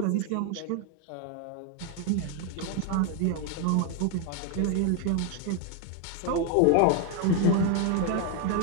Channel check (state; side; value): different; both; correlation 0.01